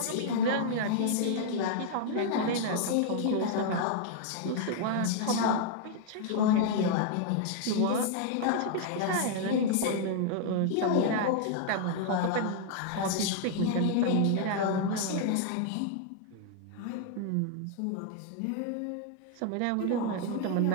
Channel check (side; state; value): both; different; correlation 0.00